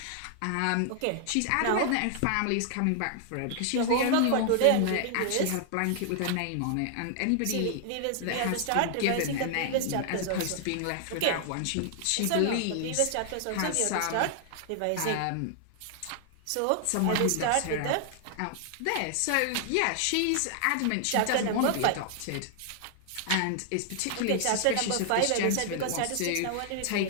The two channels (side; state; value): both; different; correlation 0.00